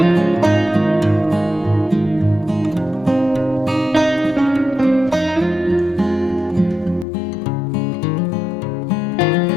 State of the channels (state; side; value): drops out; right; at 7.1 s